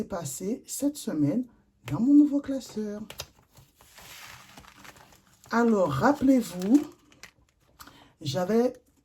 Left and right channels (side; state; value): both; identical; correlation 1.00